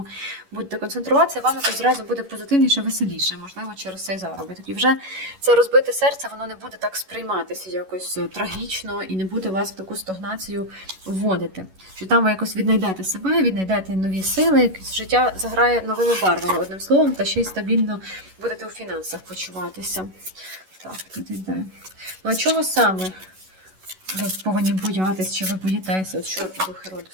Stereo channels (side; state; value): left; late; 11 ms